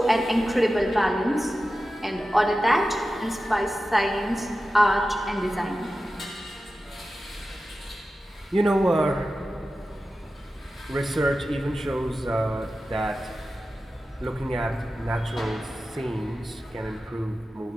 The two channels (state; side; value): normal; both; correlation 0.94